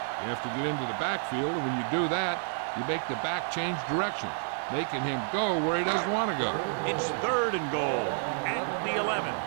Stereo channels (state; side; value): silent; left; digital silence